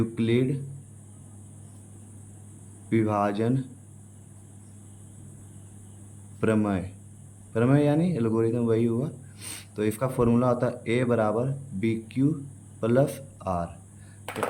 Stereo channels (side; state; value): both; identical; correlation 1.00